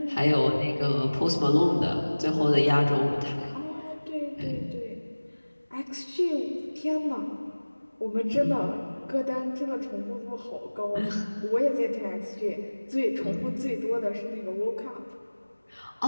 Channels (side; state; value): both; inverted; correlation -1.00